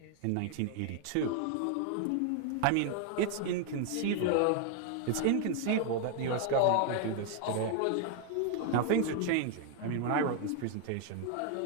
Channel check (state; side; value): different; both; correlation 0.00